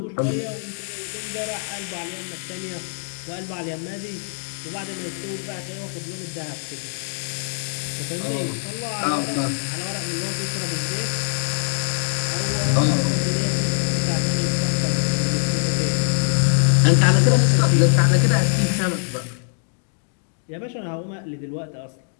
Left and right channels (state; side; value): silent; right; digital silence